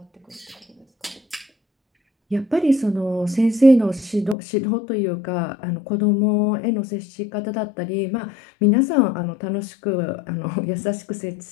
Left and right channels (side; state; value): right; drops out; at 4.4 s